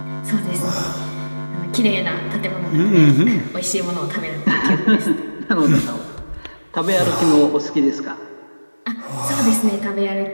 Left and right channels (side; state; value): both; inverted; correlation -1.00